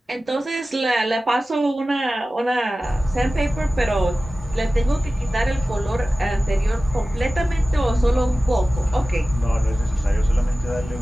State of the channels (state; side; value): normal; both; correlation 0.96